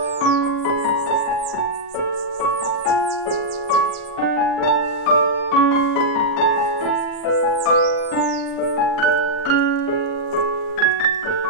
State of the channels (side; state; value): right; late; 37 ms